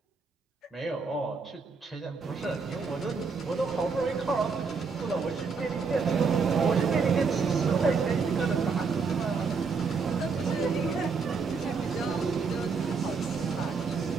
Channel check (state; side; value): quieter; left; 5.0 dB